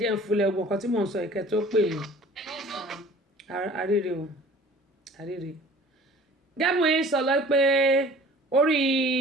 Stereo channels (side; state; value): both; normal; correlation 0.47